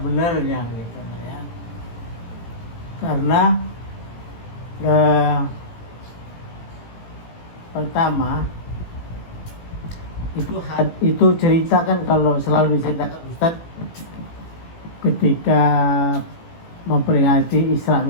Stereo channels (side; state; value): right; late; 18 ms